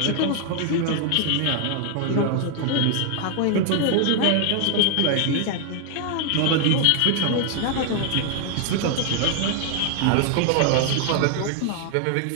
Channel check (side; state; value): both; different; correlation 0.00